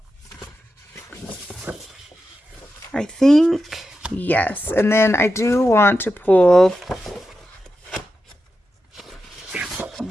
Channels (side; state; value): both; normal; correlation 0.89